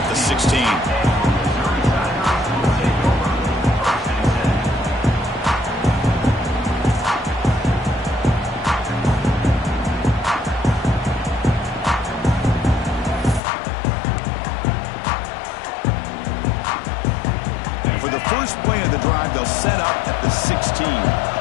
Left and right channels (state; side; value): drops out; right; at 13.4 s